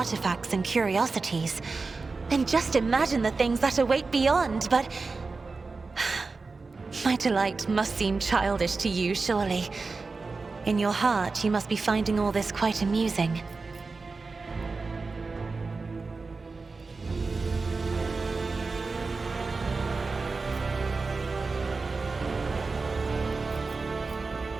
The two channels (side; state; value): left; quieter; 4.1 dB